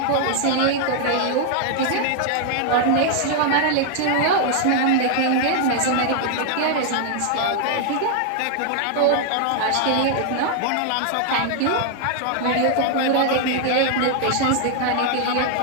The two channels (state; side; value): different; both; correlation 0.00